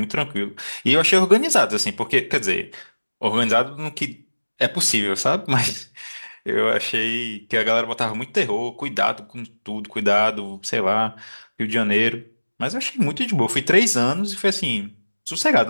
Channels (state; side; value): inverted; both; correlation -1.00